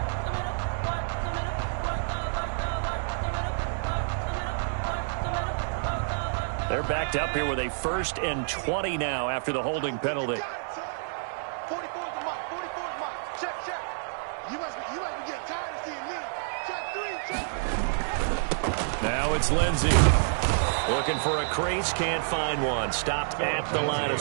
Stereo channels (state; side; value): silent; left; 59 dB below the other